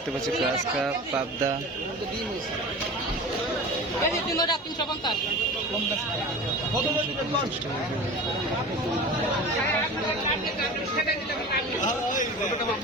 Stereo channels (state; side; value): normal; both; correlation 0.34